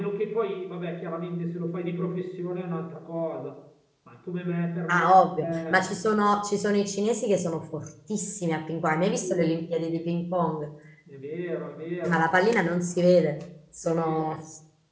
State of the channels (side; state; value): both; identical; correlation 1.00